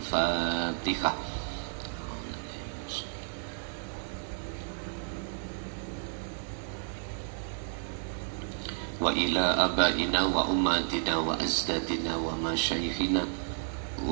fatihah. Wa ila abaina wa ummatina wa azdadina wa masyayikhina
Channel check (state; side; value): silent; left; digital silence